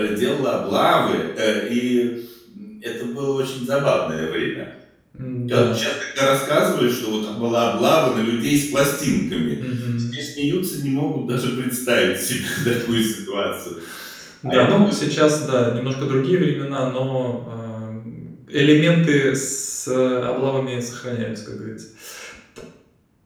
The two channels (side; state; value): both; identical; correlation 1.00